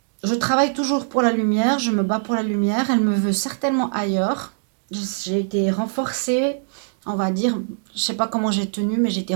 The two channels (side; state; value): left; silent; digital silence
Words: Je travaille toujours pour la lumière, je me bats pour la lumière, elle me veut certainement ailleurs. J'ai été renforcée, on va dire, je sais pas comment j'ai tenu, mais j'ai été